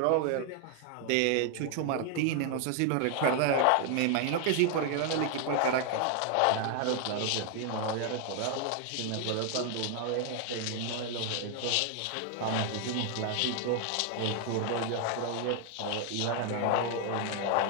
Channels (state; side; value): different; both; correlation 0.00